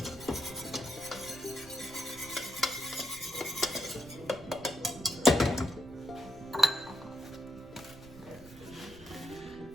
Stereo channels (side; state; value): right; noise; rumble, 20 dB below the sound